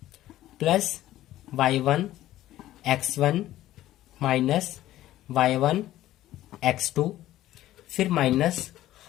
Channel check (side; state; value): right; quieter; 14.3 dB